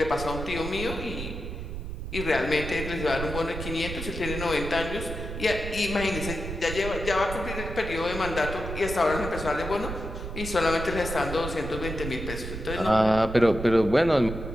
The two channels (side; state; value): right; noise; rumble, 7 dB below the sound